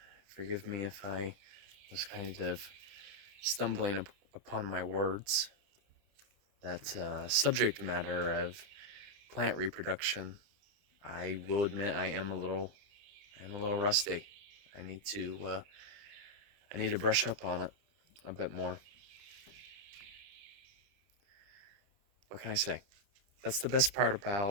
Forgive me if I was kind of stumbling upon my words. That subject matter of plant reproduction, I will admit I am a little rusty. I need to brush up on it a bit more. What can I say? That's the best part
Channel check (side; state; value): left; late; 30 ms